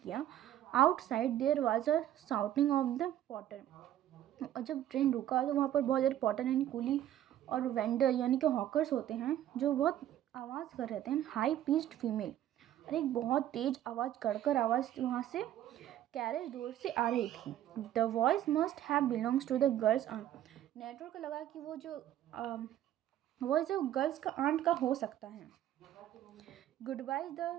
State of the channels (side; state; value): left; quieter; 12.1 dB